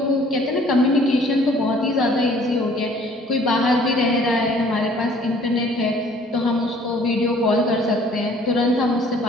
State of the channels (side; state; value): both; normal; correlation 0.56